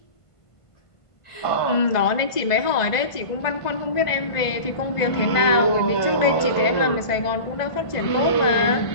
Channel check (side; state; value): right; late; 1.5 ms